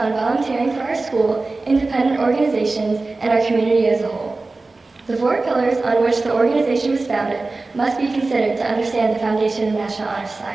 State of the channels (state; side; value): quieter; left; 3.5 dB